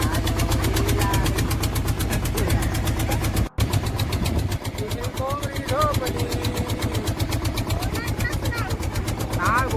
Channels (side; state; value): both; identical; correlation 1.00